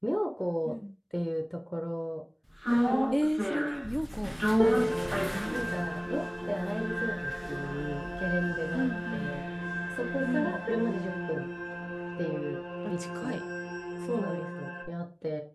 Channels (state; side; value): identical; both; correlation 1.00